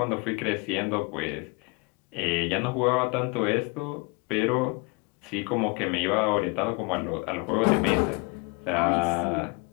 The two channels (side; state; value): right; quieter; 28.7 dB